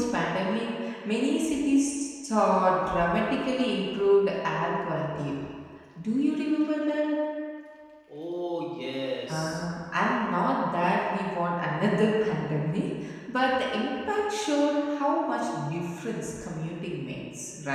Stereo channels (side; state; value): both; identical; correlation 1.00